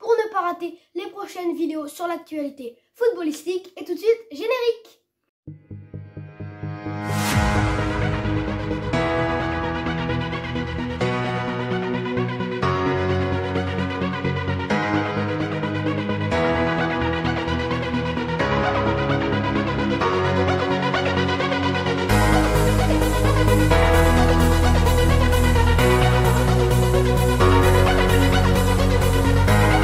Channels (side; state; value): both; identical; correlation 1.00